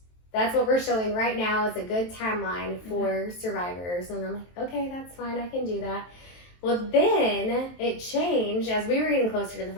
That's what we're showing right now as a good timeline for survivors. And I'm like, okay, that's fine, I can do that. Well, then it changed as we were getting closer to the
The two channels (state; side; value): late; right; 23 ms